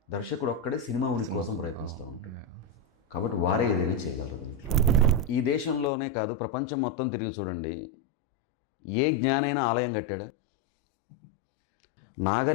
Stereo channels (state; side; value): drops out; right; at 5.9 s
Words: దర్శకుడు ఒక్కడే సినిమా ఉనికి కోసం ప్రయత్నిస్తూ ఉంటాడు. కాబట్టి వారే ఏదైనా చేయగలరు దీంట్లో. ఈ దేశంలోనే కాదు ప్రపంచం మొత్తం తిరిగి చూడండి, ఏ జ్ఞానైనా ఆలయం కట్టాడా?